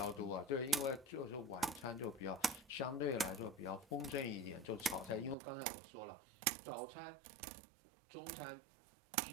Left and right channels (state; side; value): drops out; left; at 5.4 s